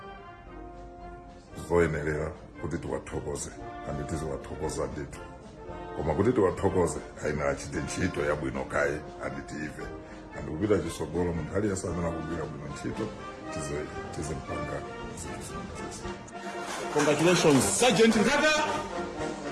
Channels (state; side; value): identical; both; correlation 1.00